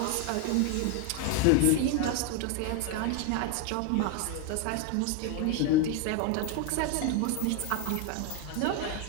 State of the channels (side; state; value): both; different; correlation 0.01